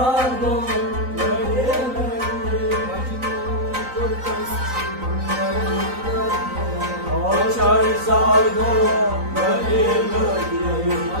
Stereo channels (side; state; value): left; late; 3.9 ms